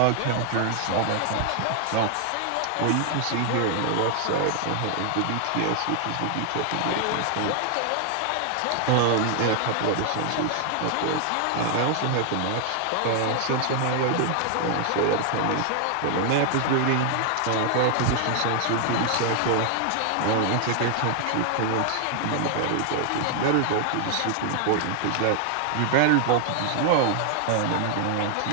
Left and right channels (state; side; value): different; both; correlation 0.00